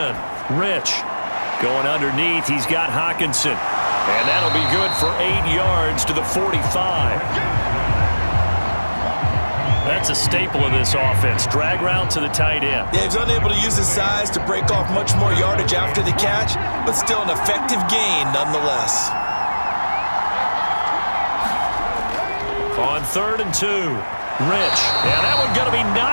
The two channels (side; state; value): both; inverted; correlation -1.00